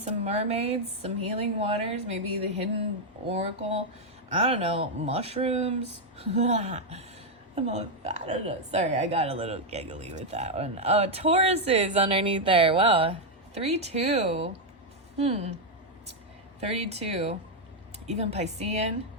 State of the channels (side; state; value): both; normal; correlation 0.01